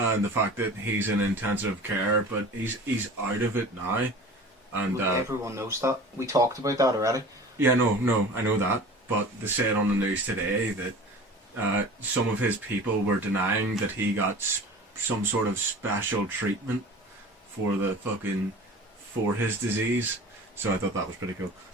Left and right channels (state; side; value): normal; both; correlation 0.39